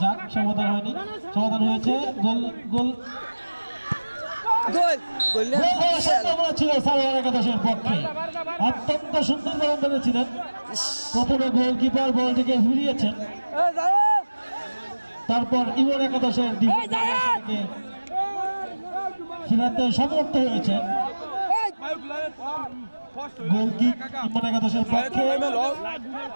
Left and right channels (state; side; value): inverted; both; correlation -1.00